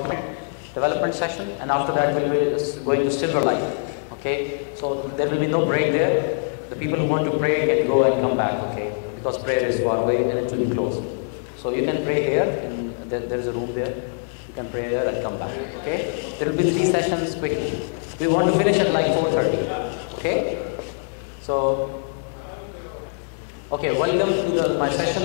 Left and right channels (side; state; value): right; silent; digital silence